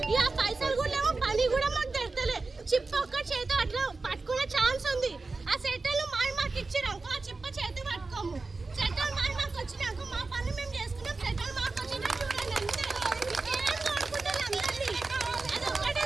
ఇక ఆ పైసలు కూడా లేవు, పని కూడా మాకు తెరతలే. చిప్ప ఒక్క చేతి అట్లా పట్టుకునే ఛాన్స్ ఉంది. ఆ సెటర్లు మాకు ఇచ్చినాక ఆ చిప్ప చేతి పట్టుకోము. సెటర్లు మాకు వచ్చినాక మా పని మేము చేసుకున్నాం. సెటర్లు మాకు వచ్చినా చూడండి అంతే. ఏం కోరుకుంటారు అందరినీ, అది ఒక్కటే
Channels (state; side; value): quieter; left; 3.7 dB